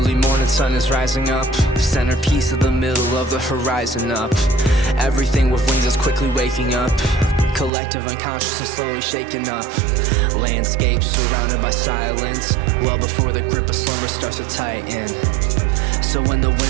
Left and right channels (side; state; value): left; drops out; at 7.7 s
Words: morning sun is rising up, centerpiece of the middle of the horizon up. Everything with wings is quickly waking up, collective unconsciousness slowly shaken up. Landscape surrounded by silence, well before the grip of slumber starts to tighten. So when the